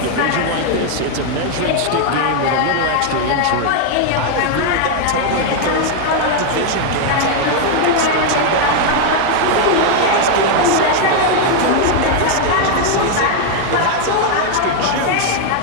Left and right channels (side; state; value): both; different; correlation 0.01